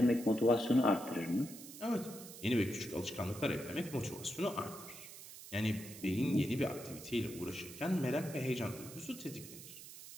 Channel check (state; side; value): noise; right; hiss, 14 dB below the sound